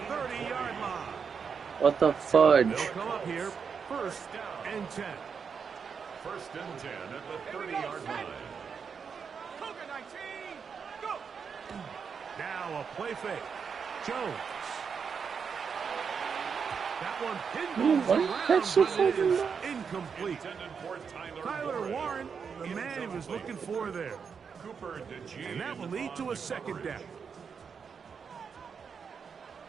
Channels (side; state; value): left; quieter; 6.3 dB